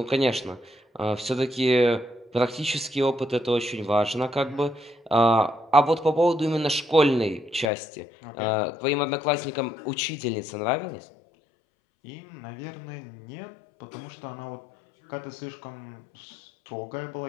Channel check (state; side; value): drops out; right; at 7.7 s